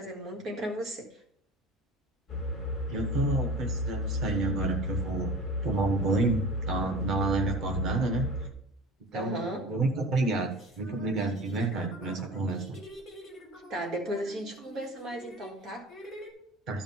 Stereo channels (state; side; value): normal; both; correlation 0.36